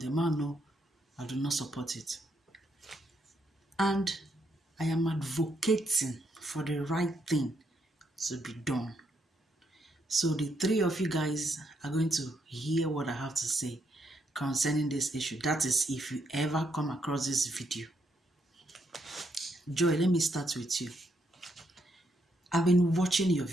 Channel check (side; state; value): both; normal; correlation 0.76